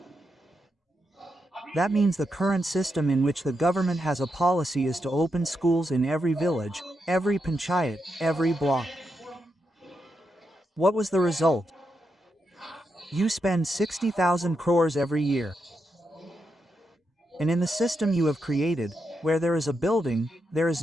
That means the current system in which the government has a policy is to open schools in every village, every panchayat, every block. What was the result? You spend 60,000 crores every year. And in the system you have created, where there is a building, there is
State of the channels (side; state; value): both; normal; correlation 0.84